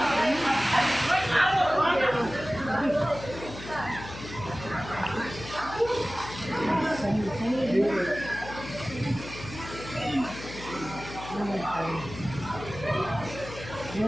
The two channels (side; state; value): left; noise; hum, 12 dB below the sound